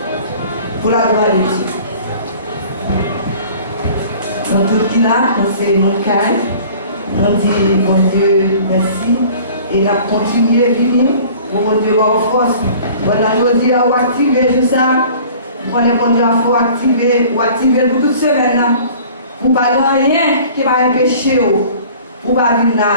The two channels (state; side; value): inverted; both; correlation -0.48